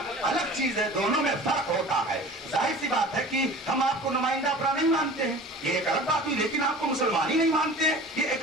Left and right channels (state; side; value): normal; both; correlation 0.40